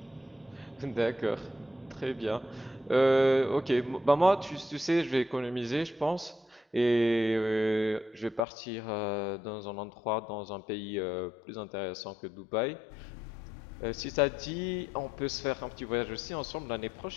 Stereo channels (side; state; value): right; drops out; at 8.4 s